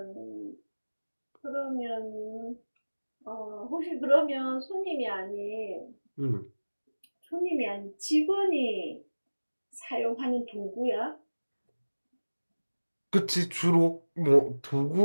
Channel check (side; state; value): both; inverted; correlation -1.00